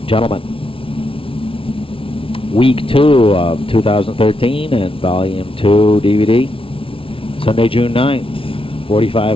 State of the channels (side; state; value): right; late; 0.26 ms